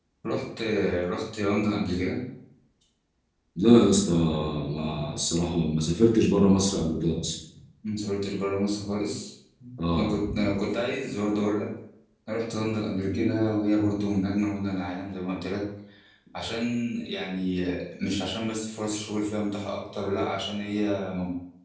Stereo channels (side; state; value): both; identical; correlation 1.00